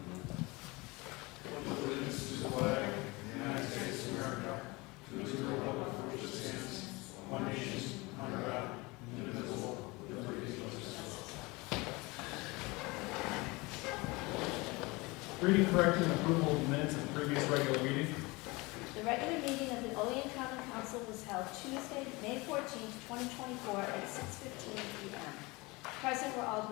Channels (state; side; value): quieter; right; 24.3 dB